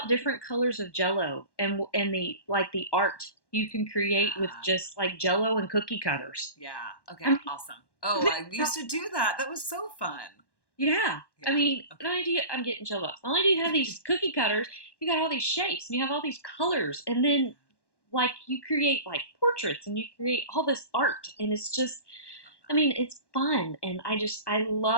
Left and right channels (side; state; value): right; late; 1.1 ms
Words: different colors of jello, and the like the art you can create with Yeah. just like jello and cookie cutters. Yeah. Okay, I mean, awesome. Oh, I used to do that. That was so fun. yeah. I Yeah. mean, not Okay. only do you, I'm getting chill bumps. Not only do you have these cookie cutters, you got all these shapes and you have all these colors, and then like you create like portraits and you create all this art, and it's just, I mean, it's fun, and I